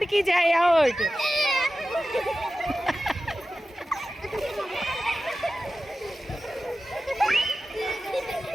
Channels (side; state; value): both; normal; correlation 0.94